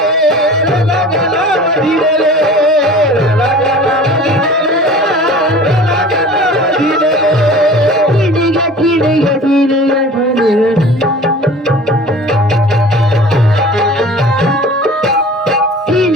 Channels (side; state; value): both; normal; correlation 0.42